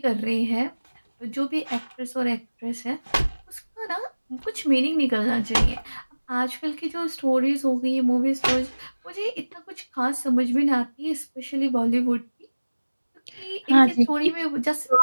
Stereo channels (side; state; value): both; inverted; correlation -1.00